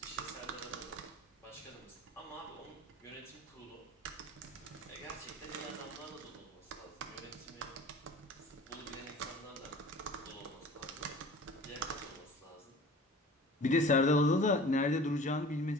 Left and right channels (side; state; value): both; normal; correlation 0.42